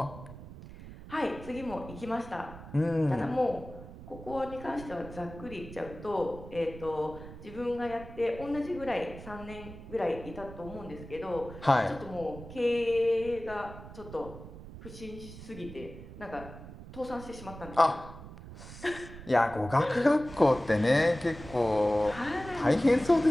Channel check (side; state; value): right; noise; rumble, 14 dB below the sound